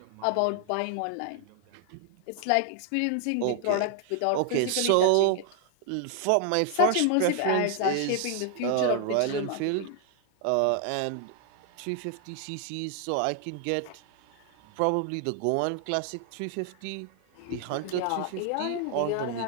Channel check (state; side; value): different; both; correlation 0.00